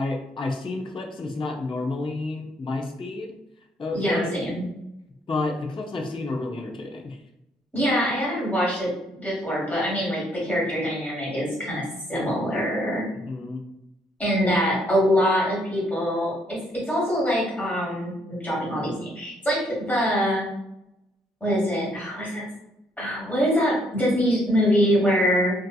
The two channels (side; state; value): both; normal; correlation 0.69